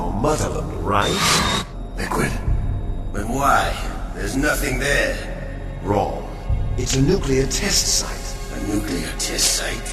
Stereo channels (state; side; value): identical; both; correlation 1.00